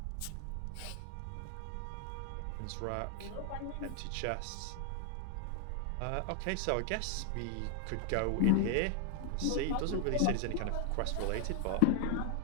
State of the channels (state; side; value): different; both; correlation 0.00